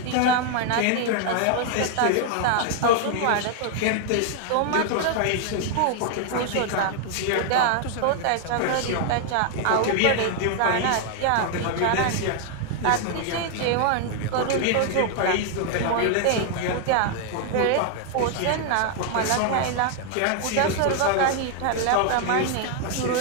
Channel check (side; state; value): both; different; correlation 0.00